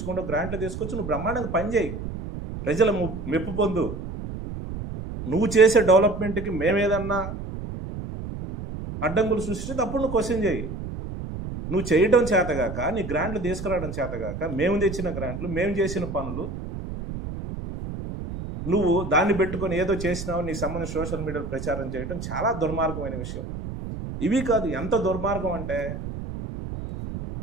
గ్రాంట్లు తీసుకొచ్చి నువ్వు బ్రహ్మాండంగా పని చేయి, ప్రజల మెప్పు పొందు. నువ్వు చేసే డెవలప్మెంట్కి మేమేదన్నా అడ్డంకులు సృష్టిస్తే అప్పుడు నువ్వు క్వశ్చన్ చేయి. నువ్వు చేయడం చేతగాక, నీ గ్రాంట్లు తీసుకురావడం చేతగాక, మేము తెచ్చిన గ్రాంట్లు, మేము చేసిన పనులు నువ్వు దాన్ని పెట్టుకొని ఏదో చేసినావు నీకు సంబంధించి సోషల్ మీడియాలో ప్రచారం చేయడం చాలా దుర్మార్గమైన విషయం. ఇవి కాదు, ఎంత దుర్మార్గం అంటే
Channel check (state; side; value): noise; right; rumble, 7 dB below the sound